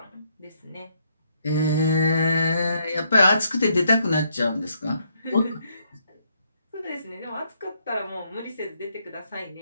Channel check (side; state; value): both; inverted; correlation -0.74